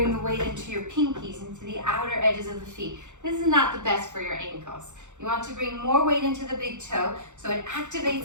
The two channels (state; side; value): late; left; 0.84 ms